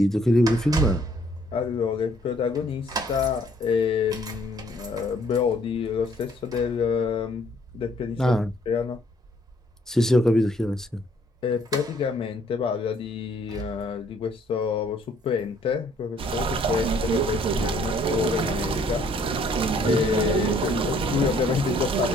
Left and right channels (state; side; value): normal; both; correlation 0.63